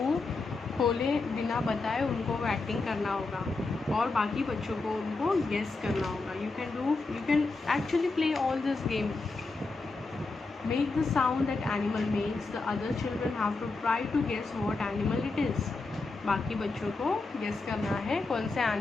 खोले बिना बताए उनको वो एक्टिंग करना होगा और बाकी बच्चों को उनको गेस करना होगा. You can actually play all this game. Make the sound that animal makes. The other children have to try to guess what animal it is. बाकी बच्चों को गेस करना है कौन से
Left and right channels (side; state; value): right; quieter; 3.7 dB